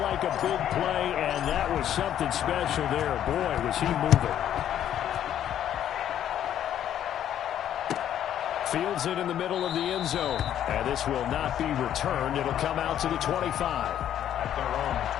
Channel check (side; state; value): right; quieter; 10.6 dB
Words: a big play, and that was something special there. Boy, was he moving. Fields it in the middle of the end zone. And this will not be returned. It'll come out to the 25. At their own